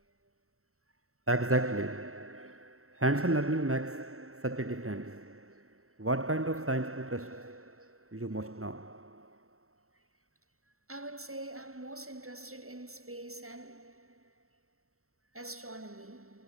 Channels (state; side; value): late; left; 0.63 ms